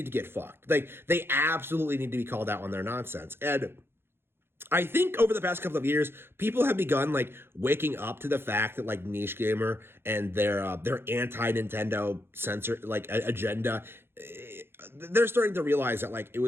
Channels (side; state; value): left; late; 0.11 ms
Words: to get fucked. They absolutely need to be called out on their nonsense. And I think over the past couple of years, people have begun waking up to the fact that NICHEGAMER and their anti-Nintendo censor agenda, they're starting to realize that it